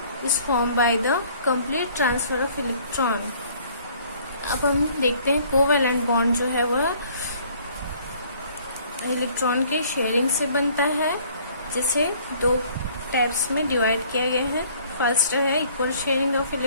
is form by the complete transfer of electron. अब हम देखते हैं कोवैलेंट बॉन्ड जो है वह इलेक्ट्रॉन के शेयरिंग से बनता है, जिसे दो टाइप्स में डिवाइड किया गया है। फर्स्ट है equal sharing of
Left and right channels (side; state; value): both; inverted; correlation -0.58